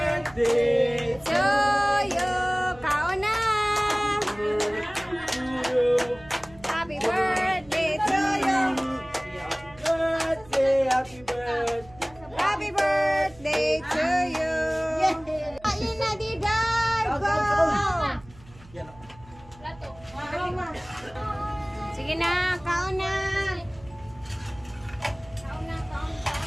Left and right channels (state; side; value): noise; right; hum, 23 dB below the sound